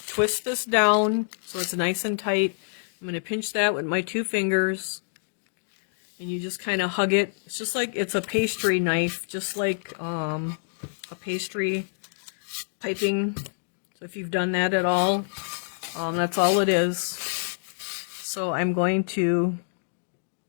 this down so it's nice and tight. I'm going to pinch that with my 2 fingers. And you just kind of hug it. It's just like it's a pastry knife, just like a pastry piping. So if you've done that at all, that's all it is. So I'm going to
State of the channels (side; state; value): right; silent; digital silence